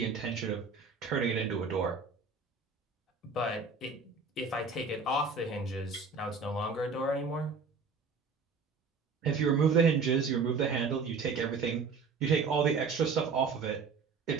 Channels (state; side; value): quieter; left; 4.7 dB